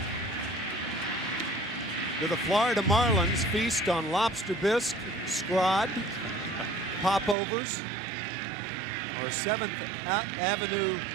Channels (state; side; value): drops out; left; at 7.4 s